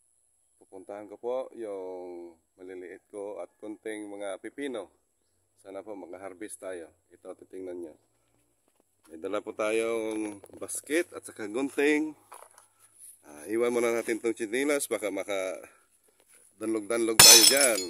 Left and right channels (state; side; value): identical; both; correlation 1.00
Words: pupuntahan ko po yung maliliit ko at konting mga pipino. Sana po mag-harvest tayo. Ito, titingnan nyo. May dala po tayong basket at saka gunting. Iwan muna natin itong chinilas, baka maka-danlog-danlog tayo dyan.